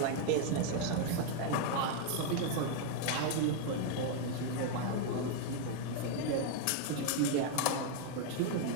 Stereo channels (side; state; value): both; different; correlation 0.00